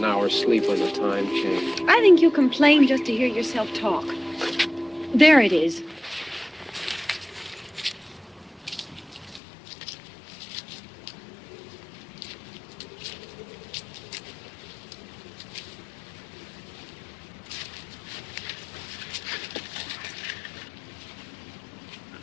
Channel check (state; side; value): drops out; right; at 9.4 s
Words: hour's sleep on the time change. I think you complain just to hear yourself talk. There it is.